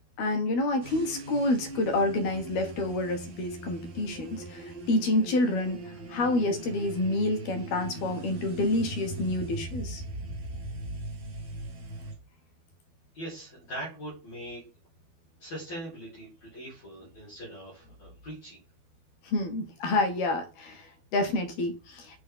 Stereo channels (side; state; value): right; late; 12 ms